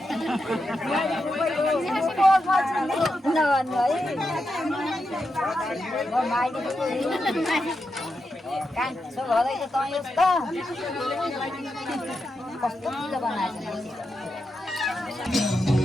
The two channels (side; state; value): both; normal; correlation 0.86